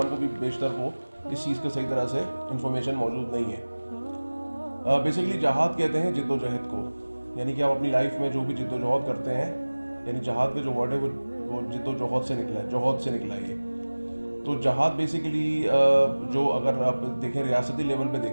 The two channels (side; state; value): both; inverted; correlation -1.00